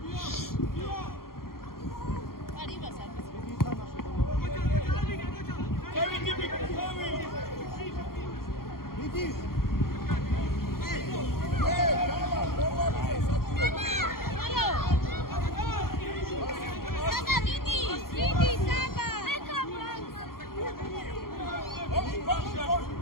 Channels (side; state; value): right; late; 0.92 ms